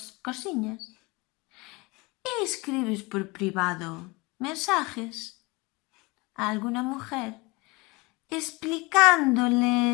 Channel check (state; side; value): quieter; right; 24.9 dB